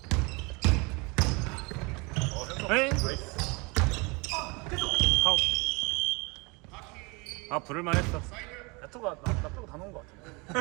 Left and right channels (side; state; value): left; quieter; 28.0 dB